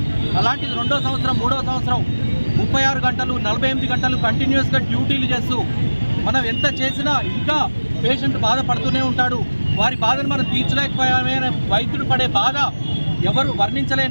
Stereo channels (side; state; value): both; inverted; correlation -1.00